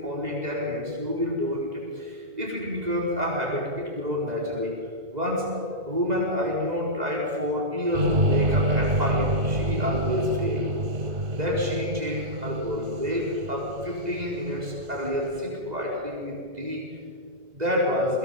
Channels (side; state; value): left; late; 2.0 ms